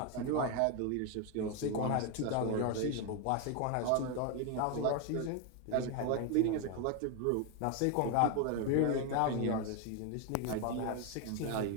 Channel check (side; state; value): both; different; correlation 0.01